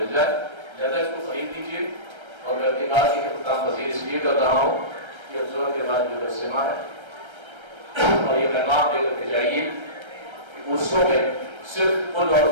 جائے. زیادہ اس کو خرید لیجیے. اور میں اپنی بات کی خطاب مزید اس لیے کر رہا ہوں کہ افزور کے بعد جو اجتماع ہے اور یہ پیغام دے کر کے جائیے کہ عرصوں میں صرف قل اور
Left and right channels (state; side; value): late; left; 1.3 ms